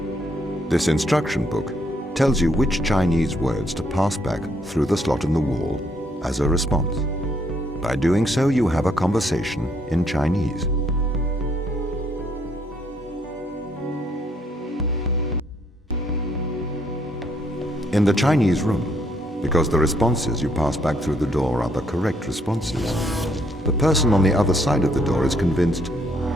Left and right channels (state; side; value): normal; both; correlation 0.70